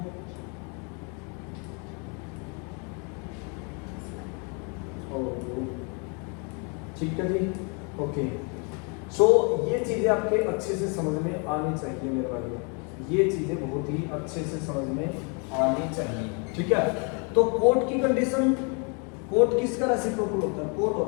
ठीक है जी, ओके। सो ये चीजें आपके अच्छे से समझ में आनी चाहिए मेरे भाइयों, ये चीजें बहुत ही अच्छे से समझ में आनी चाहिए। ठीक है, तो कोट की कंडीशन, कोट किसका रेसिप्रोकल होता है? कोट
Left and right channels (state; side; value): quieter; right; 35.4 dB